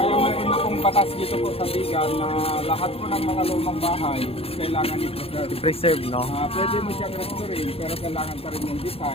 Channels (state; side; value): late; right; 0.28 ms